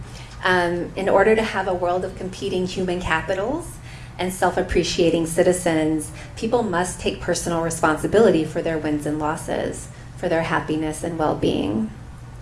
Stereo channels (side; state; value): both; identical; correlation 1.00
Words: In order to have a world of competing human capitals and self-appreciating citizens, people must take personal responsibility for their wins and losses, for their happiness and well-being.